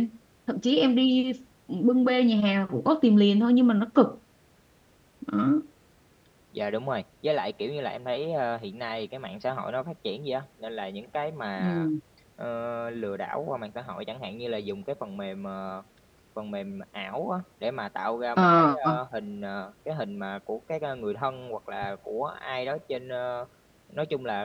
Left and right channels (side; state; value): both; identical; correlation 1.00